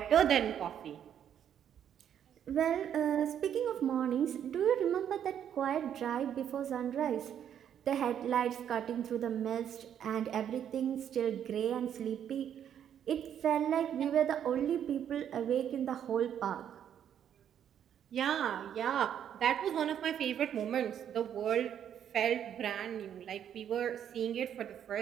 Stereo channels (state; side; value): quieter; left; 9.4 dB